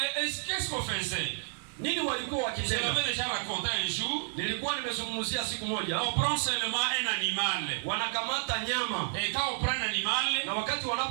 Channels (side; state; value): left; silent; digital silence